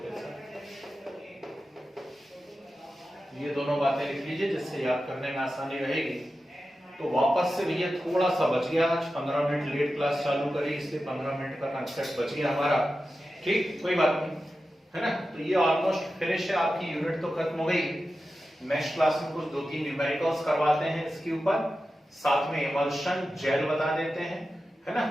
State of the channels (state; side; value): normal; both; correlation 0.92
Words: ये दोनों बातें लिख लीजिए जिससे याद करने में आसानी रहेगी। तो वापस से भैया थोड़ा सा बच गया, आज 15 मिनट लेट क्लास चालू करी, इसलिए 15 मिनट का कंसेप्ट बच गया हमारा, ठीक, कोई बात नहीं, है ना। तो ये ऑलमोस्ट फिनिश है, आपकी यूनिट तो खत्म हो गई। नेक्स्ट क्लास में कुछ 2-3 न्यूमेरिकल्स करवाते हैं इसके ऊपर, साथ में इमल्शन जेल बता देते हैं, है ना,